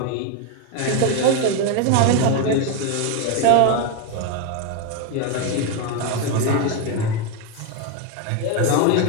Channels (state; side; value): different; both; correlation 0.02